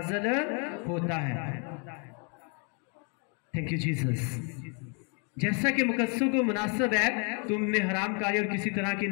होता है। Thank you Jesus. जैसा कि मुकद्दसों को मुनासिब है तुमने हरामकारी और किसी तरह की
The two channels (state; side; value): quieter; right; 38.0 dB